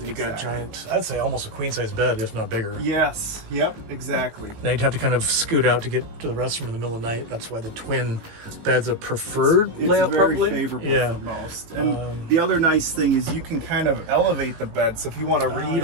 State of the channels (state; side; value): late; left; 19 ms